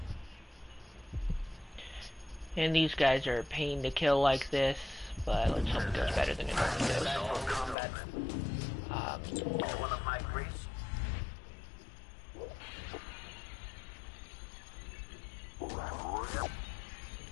And these guys are a pain to kill like this, but let's hope it goes better than it normally does.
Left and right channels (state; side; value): drops out; right; at 7.8 s